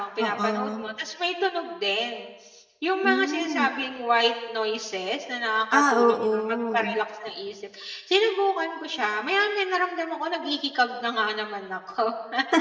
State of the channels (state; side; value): identical; both; correlation 1.00